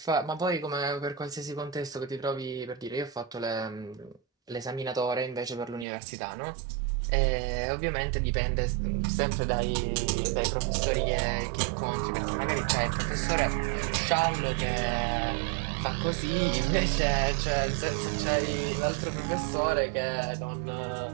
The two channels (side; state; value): left; drops out; at 5.9 s